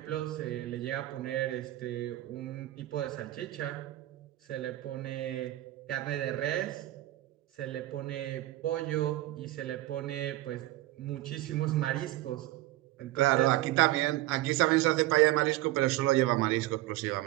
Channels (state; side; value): quieter; left; 16.5 dB